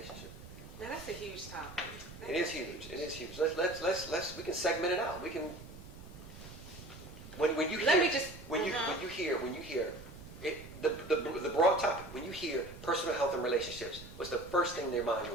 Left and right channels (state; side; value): noise; right; rumble, 15 dB below the sound